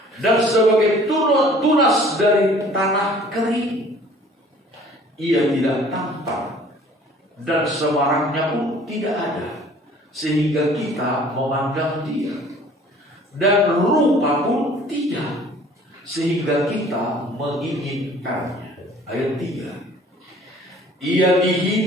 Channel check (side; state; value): both; normal; correlation 0.52